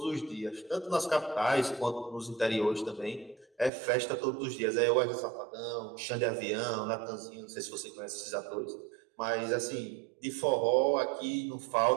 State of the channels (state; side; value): drops out; left; at 3.7 s